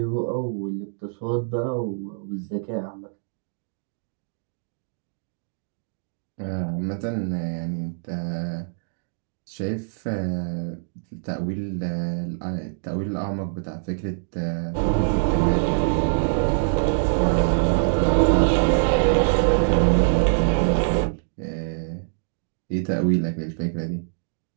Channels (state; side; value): silent; left; digital silence